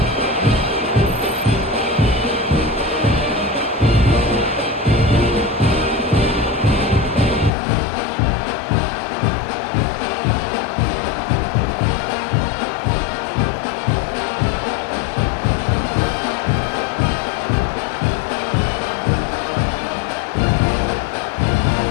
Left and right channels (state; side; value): drops out; right; at 7.5 s